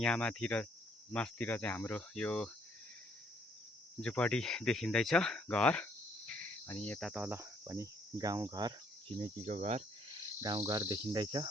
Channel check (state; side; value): normal; both; correlation 0.66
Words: माथि र मास्तिर चाहिँ हाम्रो यो झुपडी देखिँदैछ, घर। अनि यता तल पनि गाउँघर, छिमेकीको घर, गाउँघर देखिँदैछ